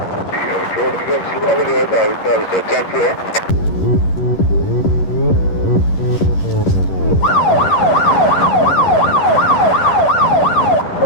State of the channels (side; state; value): right; late; 11 ms